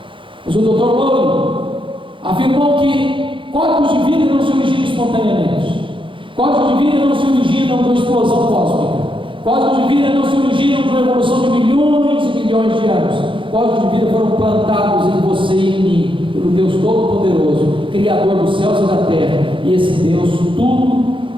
Mas o Dr. Lowry afirmou que códigos de vida não se originam espontaneamente. Códigos de vida não se originam de uma explosão cósmica. Códigos de vida não se originam de uma evolução de milhões e milhões de anos. Códigos de vida foram plantados em você e em mim, pelo Deus Todo-Poderoso, Criador dos céus e da terra. E esse Deus tudo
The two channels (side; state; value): left; late; 0.25 ms